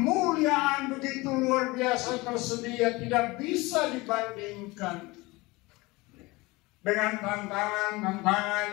begitu luar biasa tersedia, tidak bisa dibandingkan dengan tantangan-tantangan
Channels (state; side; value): quieter; right; 22.6 dB